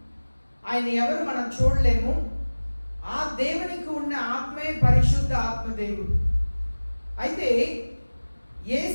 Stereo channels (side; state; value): both; inverted; correlation -1.00